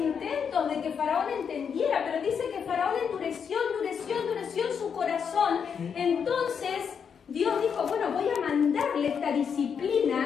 de que Faraón entendiera, pero dice que Faraón endureció en su corazón. Entonces Dios dijo, bueno, voy a mandarle esta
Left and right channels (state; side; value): quieter; right; 6.9 dB